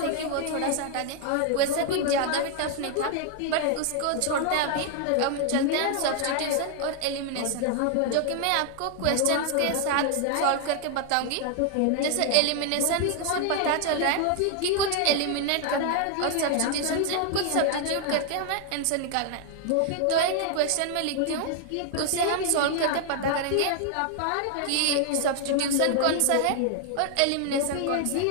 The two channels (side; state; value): both; different; correlation 0.00